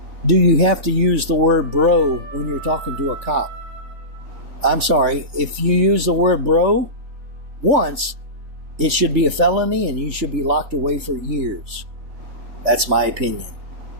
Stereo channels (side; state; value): left; late; 3.4 ms